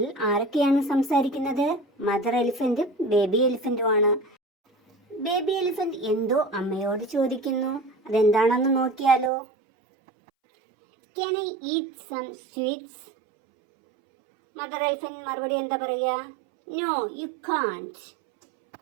ആരൊക്കെയാണ് സംസാരിക്കുന്നത്? മദർ എലിഫന്റും ബേബി എലിഫന്റുമാണ്. ബേബി എലിഫന്റ് എന്തോ അമ്മയോട് ചോദിക്കുന്നു. അതെന്താണെന്ന് നോക്കിയാലോ? Can I eat some sweets? Mother elephant മറുപടി എന്താ പറയുക? No, you can't.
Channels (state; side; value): drops out; left; at 9.3 s